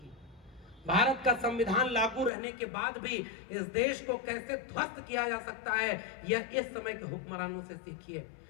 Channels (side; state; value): right; drops out; at 2.3 s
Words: भारत का संविधान लागू रहने के बाद भी इस देश को कैसे ध्वस्त किया जा सकता है, यह इस समय के हुक्मरानों से सीखिए।